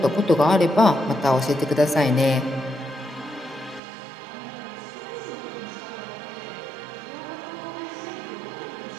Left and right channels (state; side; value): drops out; left; at 3.8 s